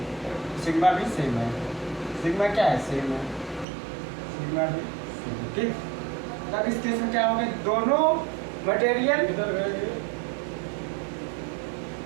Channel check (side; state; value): left; drops out; at 3.7 s